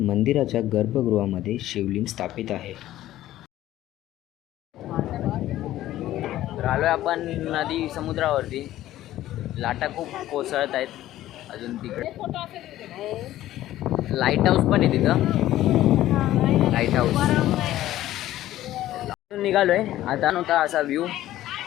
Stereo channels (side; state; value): right; quieter; 14.2 dB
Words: मंदिराच्या गर्भगृहामध्ये शिवलिंग स्थापित आहे. तर आलोय आपण नदी समुद्रावरती. लाटा खूप कोसळत आहेत. अजून तिकडे लाईट हाऊस पण आहे तिथं. लाईट हाऊस निघालोय. आता नव्हता असा व्ह्यू.